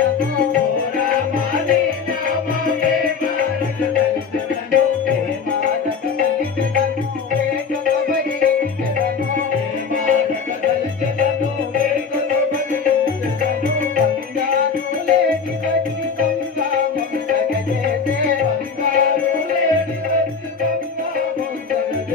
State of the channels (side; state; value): right; quieter; 5.7 dB